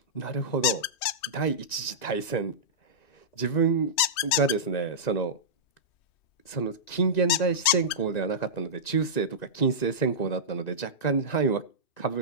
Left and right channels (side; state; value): right; late; 3.2 ms